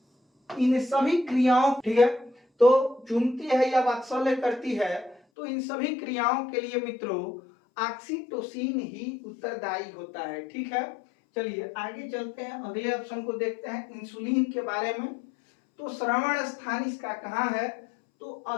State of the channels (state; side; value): drops out; right; at 5.2 s